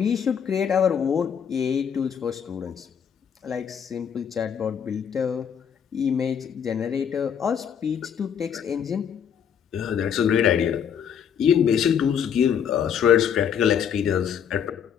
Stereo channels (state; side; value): quieter; right; 8.0 dB